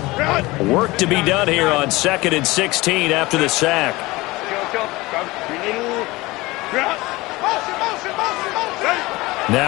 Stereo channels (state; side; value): quieter; right; 20.9 dB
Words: Work to be done here on 2nd and 16 after the sack.